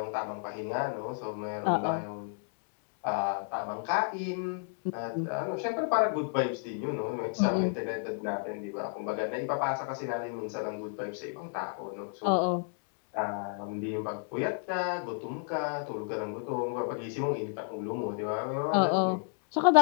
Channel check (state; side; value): silent; right; 57 dB below the other